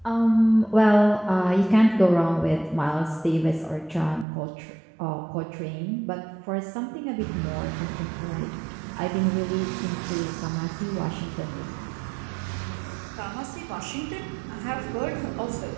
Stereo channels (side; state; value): left; drops out; at 4.2 s